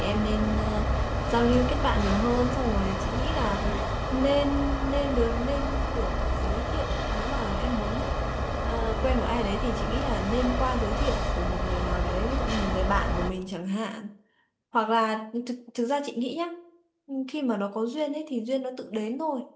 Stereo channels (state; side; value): identical; both; correlation 1.00